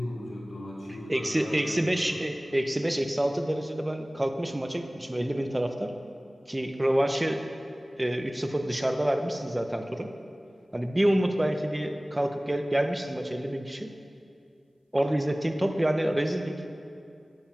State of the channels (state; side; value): normal; both; correlation 0.98